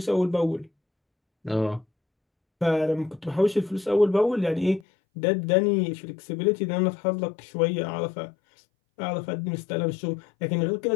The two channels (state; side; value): drops out; right; at 4.9 s